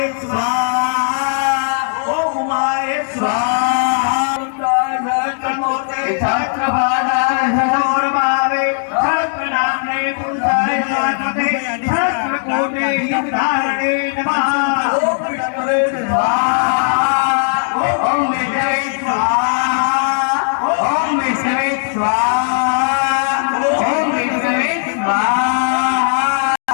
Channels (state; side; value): silent; right; digital silence